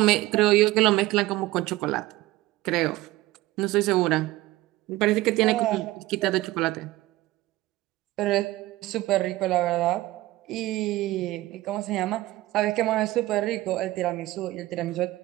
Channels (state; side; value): quieter; left; 17.8 dB